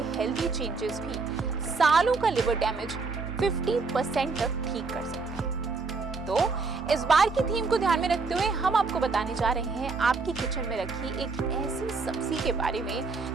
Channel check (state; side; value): quieter; left; 4.3 dB